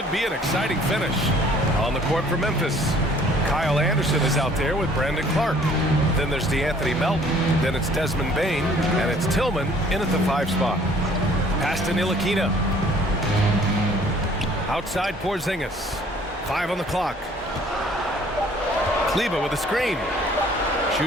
be an exciting finish. On the court for Memphis, Kyle Anderson is out there with Brandon Clark. Then there's DeAnthony Melton. Then it's Desmond Bain. And it's Tillman in at the 5 spot. Pass to Ntilikina. Outside Porzingis. 5 on the clock. Kleber with a screen.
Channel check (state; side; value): normal; both; correlation 0.56